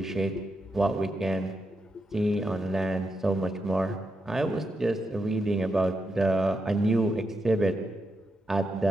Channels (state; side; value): normal; both; correlation 0.84